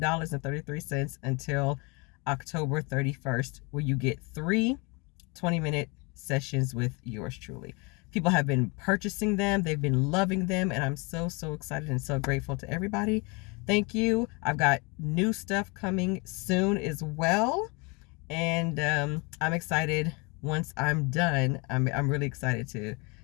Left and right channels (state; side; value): quieter; right; 29.3 dB